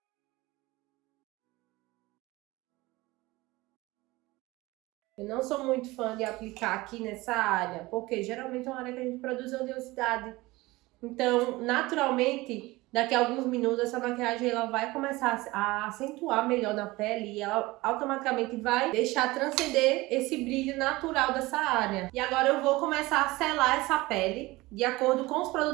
Eu não sou muito fã de aplicar aqui nessa área, porque geralmente é uma área que a gente produz oleosidade. Então, naturalmente, daqui a alguns minutos, essa maquiagem ela vai começar a acentuar melhor na pele e ela automaticamente vai deixar transcender esse brilho natural dessa área. E agora eu vou começar a selar essa pele de acordo com os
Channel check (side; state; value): left; quieter; 20.6 dB